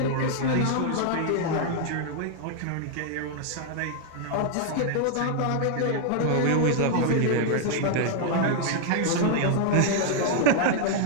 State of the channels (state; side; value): different; both; correlation 0.00